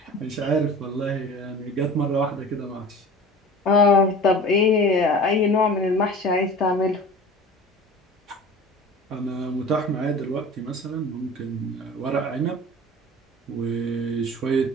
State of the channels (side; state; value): both; normal; correlation 0.38